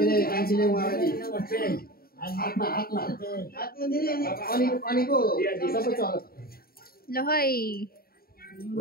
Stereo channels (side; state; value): right; late; 0.43 ms